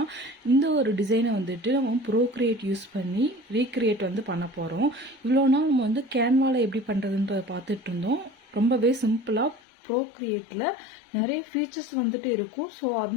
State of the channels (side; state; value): right; drops out; at 9.6 s